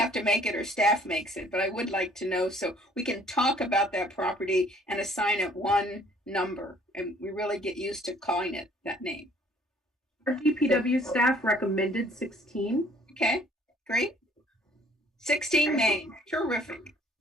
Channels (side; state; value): both; normal; correlation 0.58